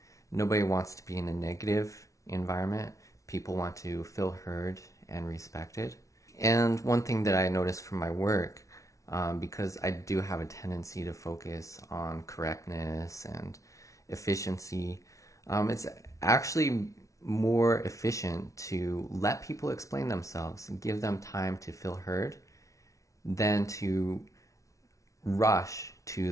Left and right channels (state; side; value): late; right; 0.15 ms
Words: Nobody wants to be in a negative environment. People want to feel heard and respected. And one thing that I noticed from my work, because I do have a tendency to focus on correctness and efficiency, it's actually more efficient to let people explain themselves and give them time to feel heard than to rush to